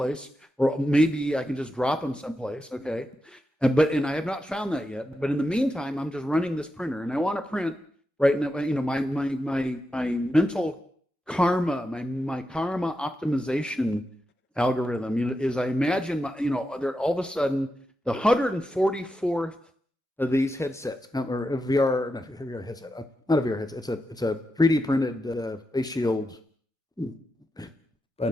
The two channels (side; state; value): both; normal; correlation 0.88